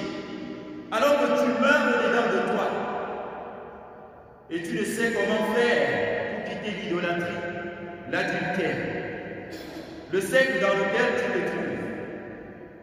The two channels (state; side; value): identical; both; correlation 1.00